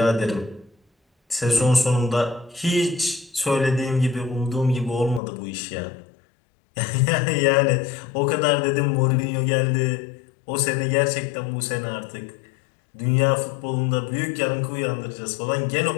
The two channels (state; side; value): drops out; right; at 5.2 s